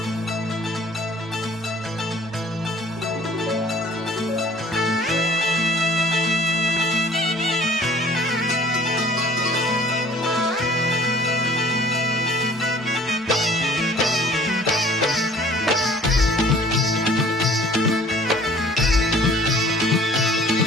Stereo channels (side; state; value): both; normal; correlation 0.52